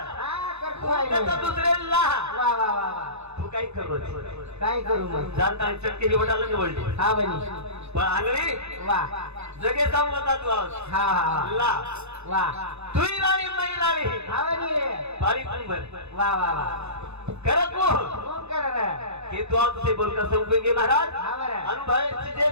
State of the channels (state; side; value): late; left; 0.81 ms